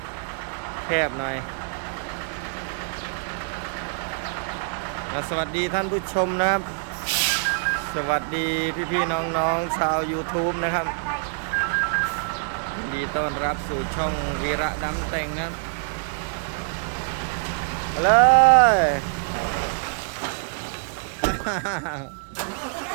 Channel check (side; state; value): left; silent; digital silence